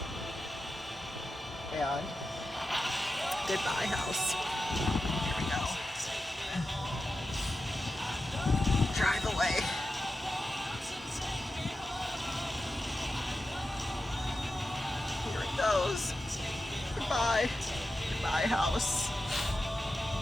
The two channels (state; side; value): normal; both; correlation 0.91